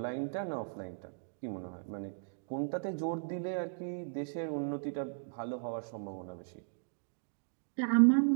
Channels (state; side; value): silent; left; digital silence